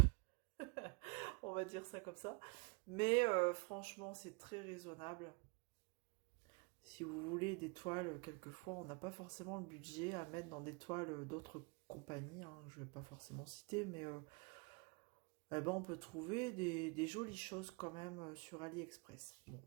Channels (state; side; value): quieter; left; 30.7 dB